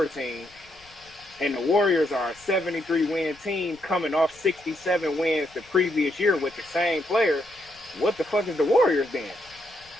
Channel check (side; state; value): left; noise; rumble, 27 dB below the sound